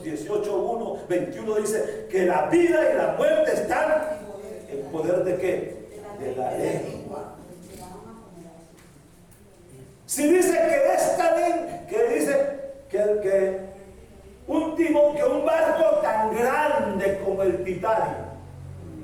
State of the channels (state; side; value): identical; both; correlation 1.00